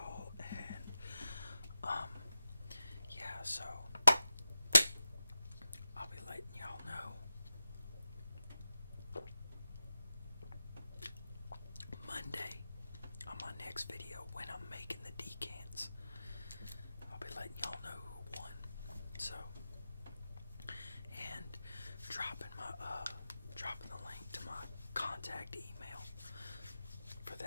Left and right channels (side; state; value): both; inverted; correlation -0.91